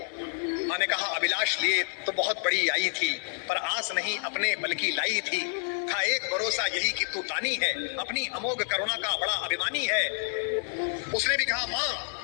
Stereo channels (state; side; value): silent; right; 59 dB below the other